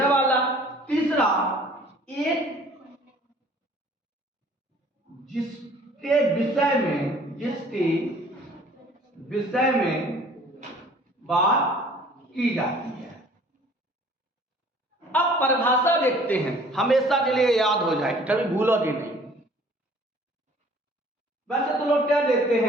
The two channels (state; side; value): normal; both; correlation 0.53